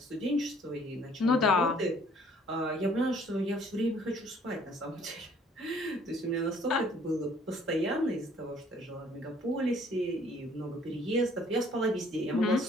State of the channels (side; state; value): both; normal; correlation 0.59